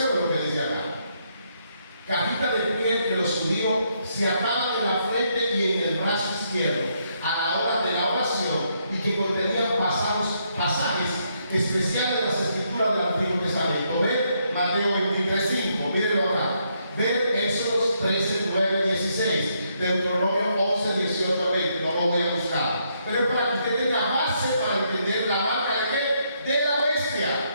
lo que dice acá. Cajita de piel que los judíos se ataban en la frente y en el brazo izquierdo a la hora de la oración y que contenían pasajes especiales de las escrituras del Antiguo Testamento. Ver Mateo 23:5, mírenlo acá. Ver Éxodo 13, 9, 16, Deuteronomio 11, 18, 20, no lo voy a buscar. Pero es para que usted tenga base para entender la marca de qué? De la bestia.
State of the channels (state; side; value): inverted; both; correlation -0.75